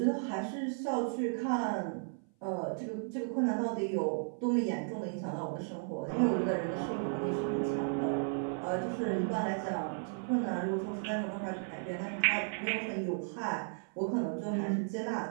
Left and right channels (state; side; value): silent; left; 55 dB below the other